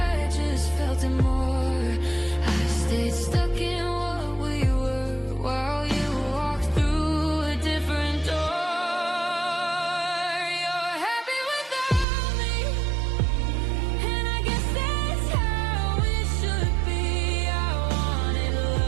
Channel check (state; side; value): drops out; left; at 12.1 s